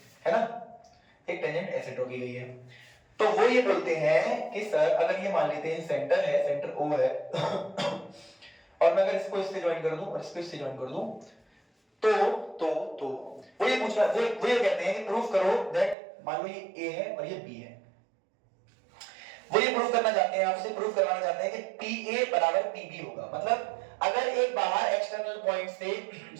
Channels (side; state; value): left; drops out; at 16.0 s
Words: ना, एक टेंजेंट ऐसे ड्रॉ की गई है, तो वो ये बोलते हैं कि सर अगर ये मान लेते हैं सेंटर है, सेंटर O है और मैं अगर इसको इससे ज्वाइन कर दूं और इसको इससे ज्वाइन कर दूं तो वो ये पूछ रहा है, वो ये कहते हैं कि प्रूफ करो दैट, मान लो ये A है और ये B है. वो ये प्रूफ करना चाहते हैं, आपसे प्रूफ करवाना चाहते हैं कि PA बराबर PB होगा. मतलब अगर एक बाहर एक्सटर्नल पॉइंट से